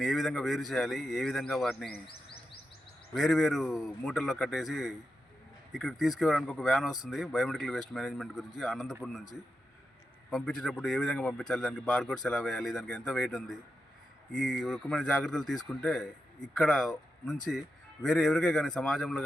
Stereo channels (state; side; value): normal; both; correlation 0.88